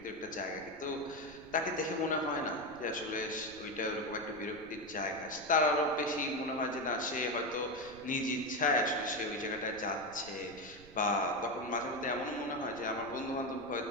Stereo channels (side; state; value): right; noise; rumble, 20 dB below the sound